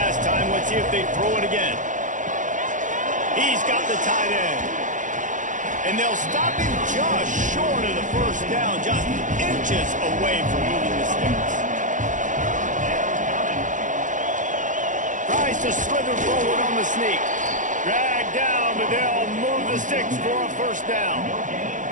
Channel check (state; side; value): late; left; 0.37 ms